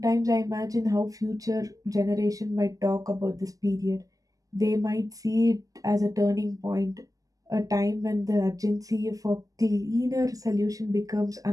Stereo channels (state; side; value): late; left; 0.17 ms